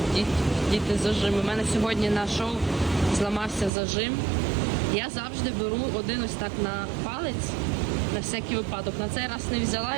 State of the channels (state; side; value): drops out; left; at 3.7 s